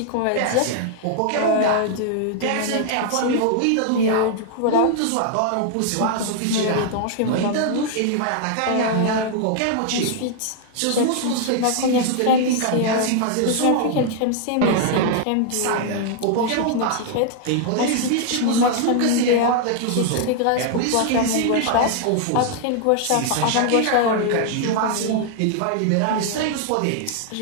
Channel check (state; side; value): different; both; correlation 0.00